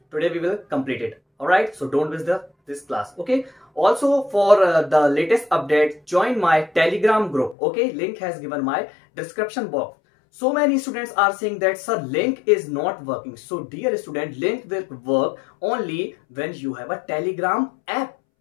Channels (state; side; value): drops out; right; at 7.6 s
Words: today we will complete it. Alright, so don't miss this class. Okay, also for the latest update, join my Telegram group. Okay, link has given my description box. So many students are saying that sir, link is not working. So dear student, link will work only when you have a Telegram app.